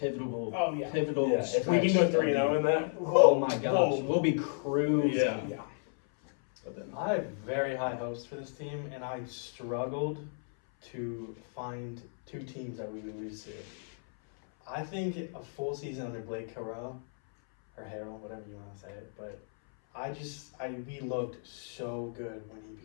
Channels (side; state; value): right; silent; 56 dB below the other